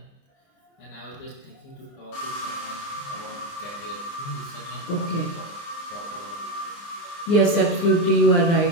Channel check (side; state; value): right; late; 29 ms